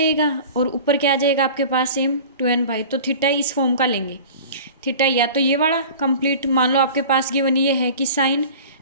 और ऊपर क्या आ जाएगा आपके पास सेम 2n पाई। तो थीटा इस फॉर्म का लेंगे। थीटा या तो ये वाला कंप्लीट, मान लो आपके पास गिवन ये है कि sine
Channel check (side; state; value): both; inverted; correlation -0.40